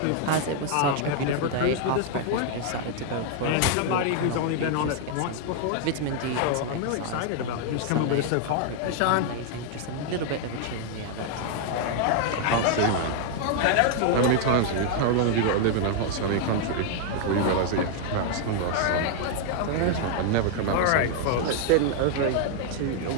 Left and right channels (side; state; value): both; different; correlation 0.00